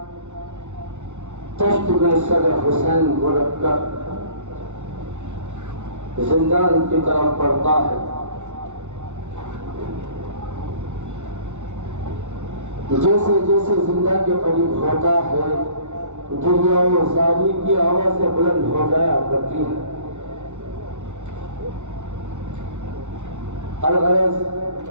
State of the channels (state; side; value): late; left; 0.84 ms